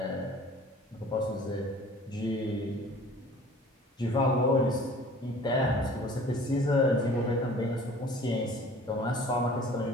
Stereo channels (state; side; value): normal; both; correlation 0.47